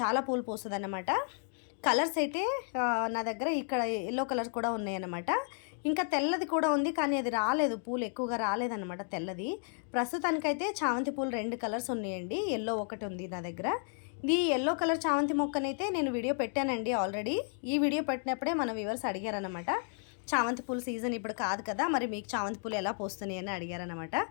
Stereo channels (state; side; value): silent; right; 56 dB below the other